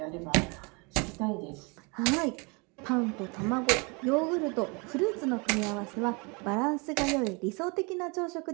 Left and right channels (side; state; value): left; quieter; 30.3 dB